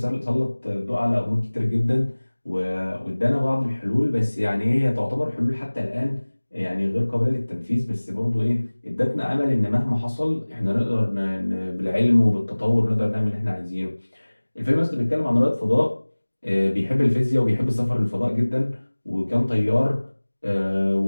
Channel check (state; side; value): inverted; both; correlation -1.00